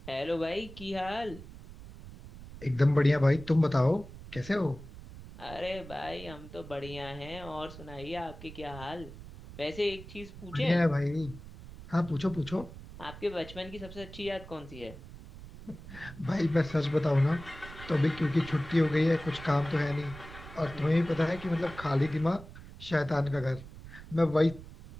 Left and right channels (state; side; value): noise; right; rumble, 15 dB below the sound